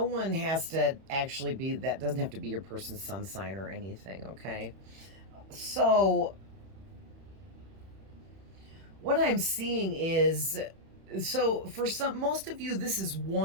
one has to actually be that, doesn't have to be your person's sun sign or anything, okay? So what I'm seeing is, so for most of you, this is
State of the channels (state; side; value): late; left; 31 ms